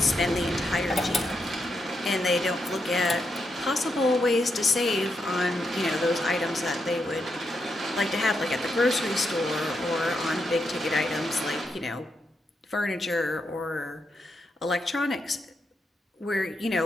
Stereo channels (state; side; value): normal; both; correlation 0.83